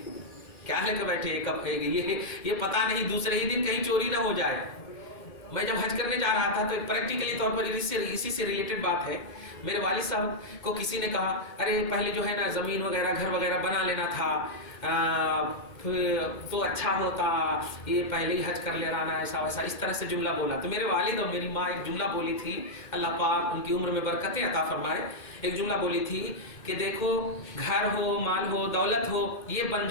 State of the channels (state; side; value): late; right; 2.1 ms